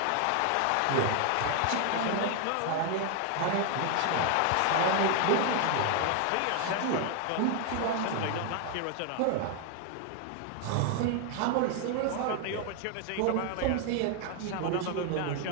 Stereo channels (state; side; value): different; both; correlation 0.00